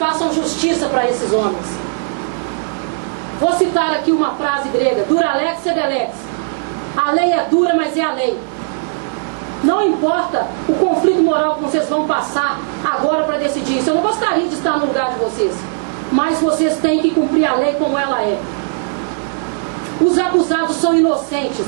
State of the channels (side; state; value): left; silent; digital silence